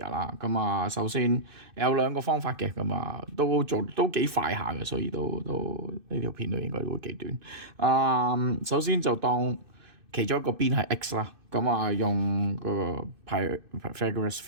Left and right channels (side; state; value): left; late; 2.6 ms